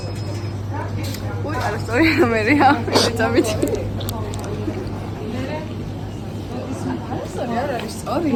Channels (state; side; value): identical; both; correlation 1.00